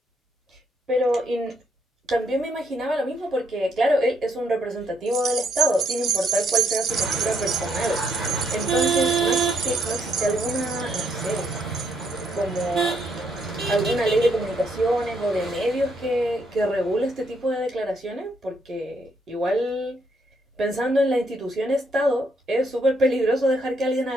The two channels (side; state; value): both; normal; correlation 0.73